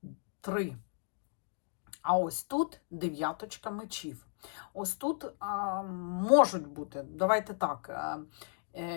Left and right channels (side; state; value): right; silent; digital silence